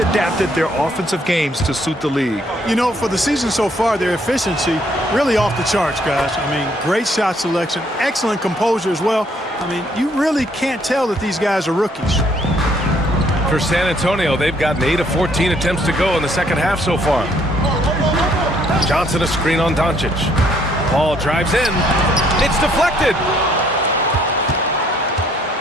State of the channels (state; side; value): normal; both; correlation 0.66